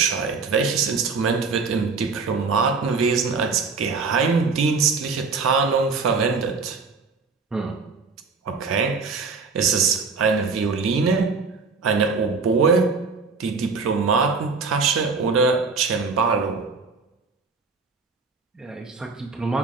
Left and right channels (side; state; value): left; quieter; 4.6 dB